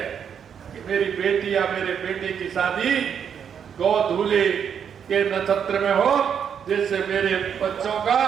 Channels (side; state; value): left; quieter; 7.8 dB